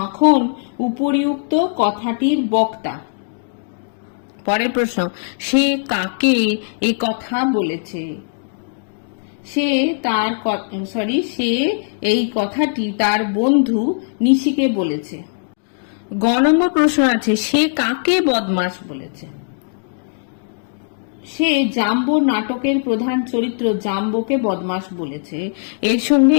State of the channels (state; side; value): silent; right; digital silence